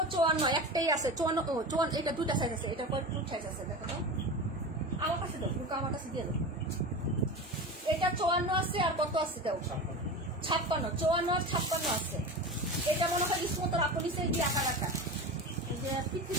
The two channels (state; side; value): normal; both; correlation 0.28